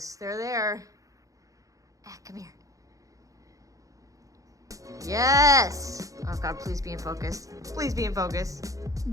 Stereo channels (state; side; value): late; left; 0.16 ms